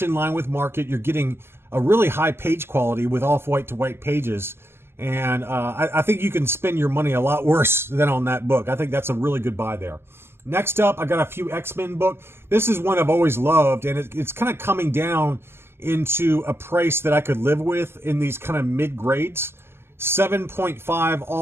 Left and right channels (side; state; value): left; late; 0.12 ms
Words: in line with market. You're getting a really high page quality with off-white to white pages, and I think you can spend your money a lot worse than on that book. I think that's a really good buy there. Next up, I got a few X-Men book. This is one I've always loved, and it's kind of coming down into a price that I could live with in these kind of mid-grades. 7.5